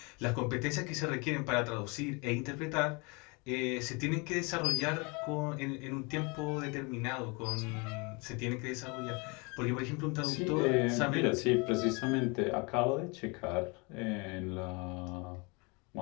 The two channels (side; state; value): right; quieter; 29.7 dB